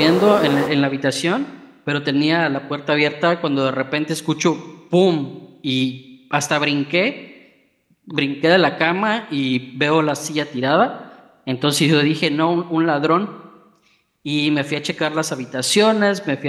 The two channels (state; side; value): identical; both; correlation 1.00